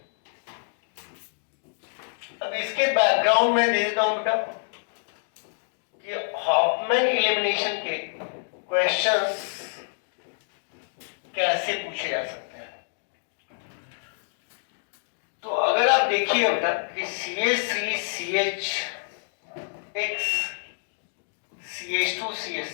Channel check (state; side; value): silent; right; digital silence